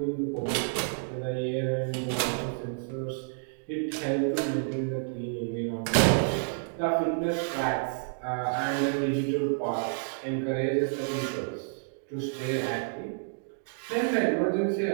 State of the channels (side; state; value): left; silent; digital silence